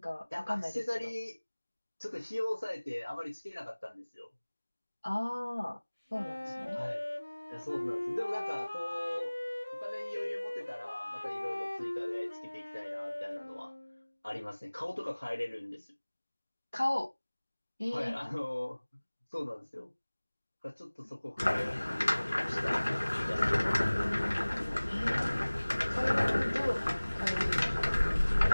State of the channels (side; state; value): both; inverted; correlation -1.00